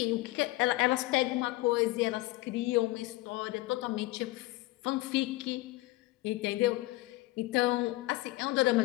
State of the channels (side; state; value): right; quieter; 19.2 dB